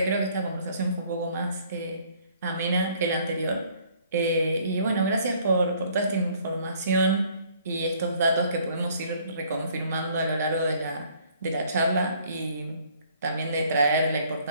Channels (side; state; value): both; inverted; correlation -0.60